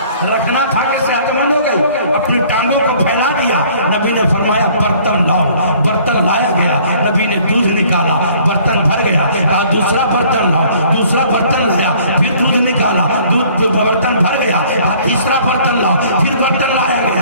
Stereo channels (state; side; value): inverted; both; correlation -0.56